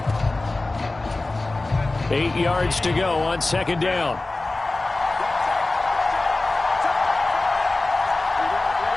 Eight yards to go on second down.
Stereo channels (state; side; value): quieter; right; 3.1 dB